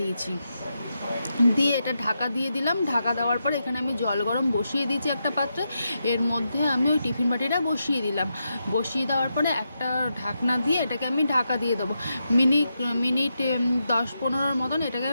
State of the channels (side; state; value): both; inverted; correlation -0.85